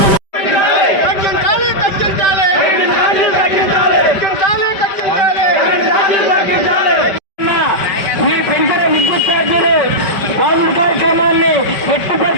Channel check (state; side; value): late; right; 5.1 ms